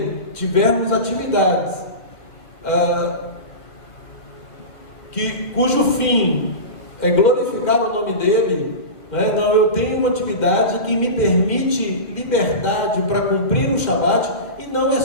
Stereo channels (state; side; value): late; right; 2.1 ms